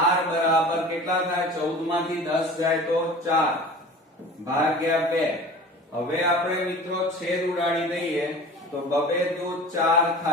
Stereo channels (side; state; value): both; normal; correlation 0.40